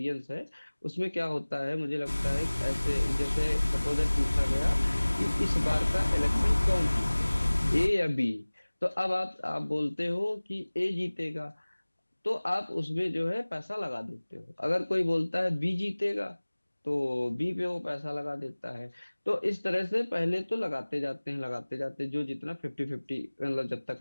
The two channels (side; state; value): both; inverted; correlation -1.00